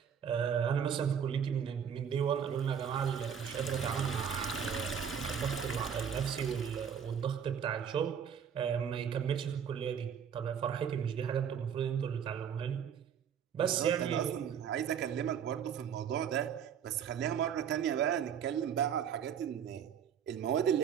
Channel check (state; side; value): quieter; left; 7.9 dB